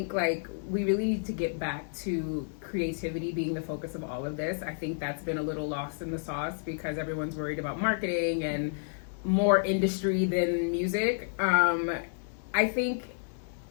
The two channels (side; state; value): right; silent; 57 dB below the other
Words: like we really need to get back to creativity being the focus of all of this. I think that's been a little lost in the sauce because everyone's worried about marketing and more industry than music. I think